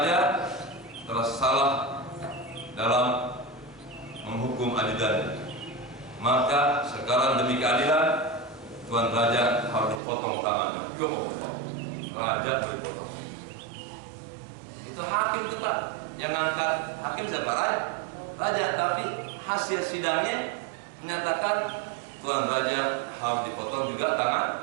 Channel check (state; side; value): drops out; left; at 10.0 s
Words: telah salah dalam menghukum ajudannya. Maka sekarang demi keadilan, Tuan Raja harus dipotong tangannya. Raja dipotong. Itu hakim itu Pak, yang ngangkat hakim siapa? Raja. Tapi hasil sidangnya menyatakan Tuan Raja harus dipotong juga